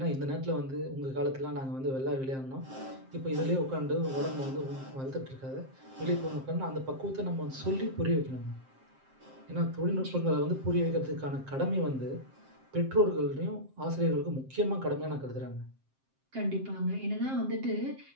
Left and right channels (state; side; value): late; left; 7.6 ms